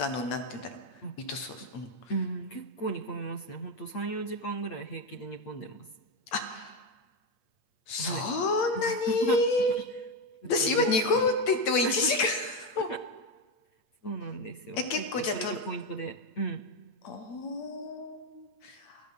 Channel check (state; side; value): late; right; 8.6 ms